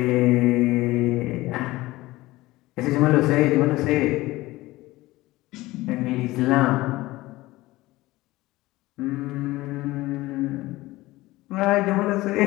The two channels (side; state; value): right; quieter; 18.8 dB